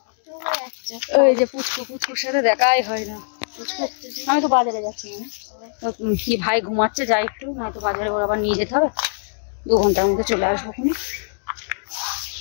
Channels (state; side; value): silent; right; digital silence